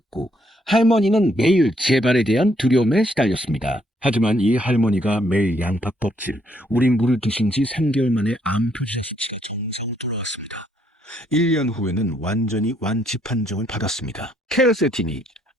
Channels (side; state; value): both; normal; correlation 0.71